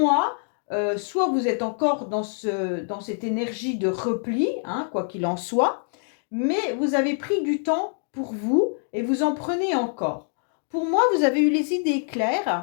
soit vous êtes encore dans cette énergie de repli, hein, quoi qu'il en soit, mais vous avez pris du temps pour vous et vous en prenez encore. Pour moi, vous avez eu les idées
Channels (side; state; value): right; silent; 62 dB below the other